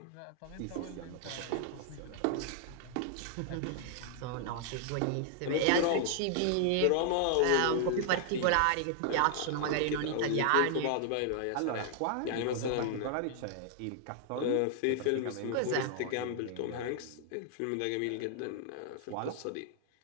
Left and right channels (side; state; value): both; different; correlation 0.00